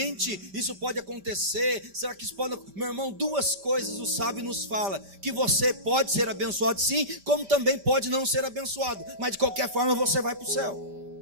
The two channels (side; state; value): left; late; 5.0 ms